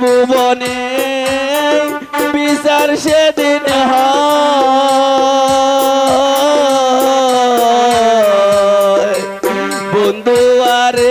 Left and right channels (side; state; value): both; identical; correlation 1.00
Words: বিচার সেদিন হয় বন্ধু